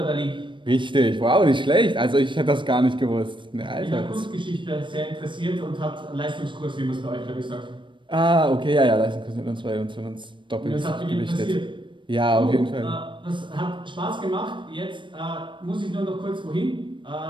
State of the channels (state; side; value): late; left; 0.24 ms